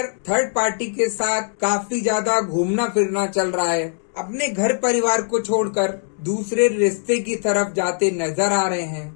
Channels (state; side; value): silent; right; digital silence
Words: थर्ड पार्टी के साथ काफी ज्यादा घूमना फिरना चल रहा है, अपने घर परिवार को छोड़कर दूसरे रिश्ते की तरफ जाते नजर आ रहे हैं।